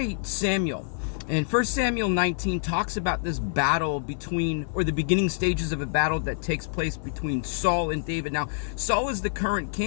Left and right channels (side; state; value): right; silent; 60 dB below the other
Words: Samuel. And 1 Samuel 19 talks about this battle or the beginning stages of a battle that takes place between Saul and David. Now, Saul is the current